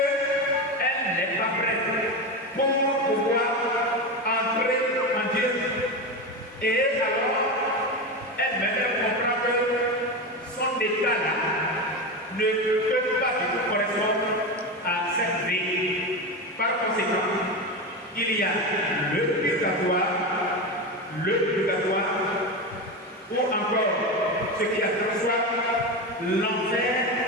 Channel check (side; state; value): both; normal; correlation 0.19